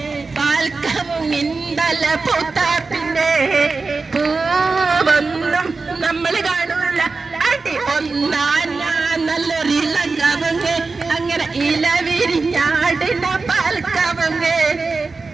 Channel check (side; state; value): left; quieter; 4.1 dB